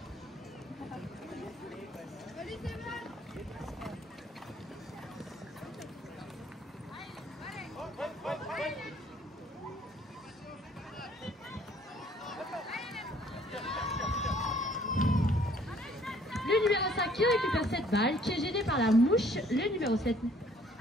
Le numéro 5 qui récupère cette balle, qui est gêné par la mouche. Le numéro 7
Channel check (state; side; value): normal; both; correlation 0.60